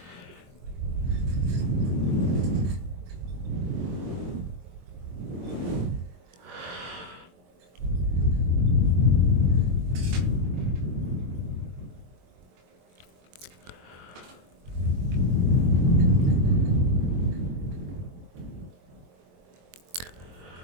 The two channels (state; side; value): late; left; 23 ms